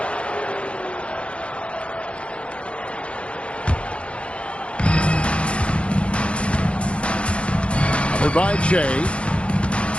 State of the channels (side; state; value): right; late; 0.060 ms